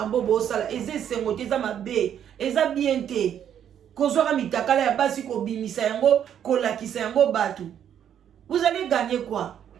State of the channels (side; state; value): left; quieter; 9.4 dB